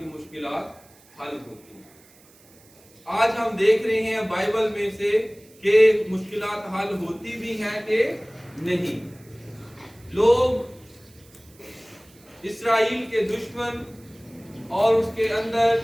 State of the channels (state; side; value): noise; right; hiss, 27 dB below the sound